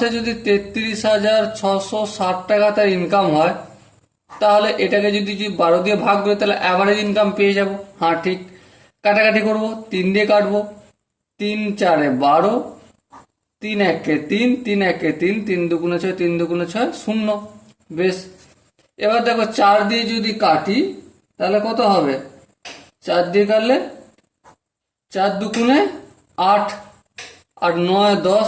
যদি 33,660 টাকা তার ইনকাম হয়, তাহলে এটাকে যদি 12 দিয়ে ভাগ করে তাহলে অ্যাভারেজ ইনকাম পেয়ে যাব। হ্যাঁ ঠিক, কাটাকাটি করবো, 3 দিয়ে কাটবো, 3 4 12, 3 1 3, 3 1 3, 3 2 6, 3 2 6 0। বেশ, এবার দেখো 4 দিয়ে যদি কাটি তাহলে কত হবে? 4 দিয়ে কাটলে 4 2 8, আর 9 10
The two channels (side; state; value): both; identical; correlation 1.00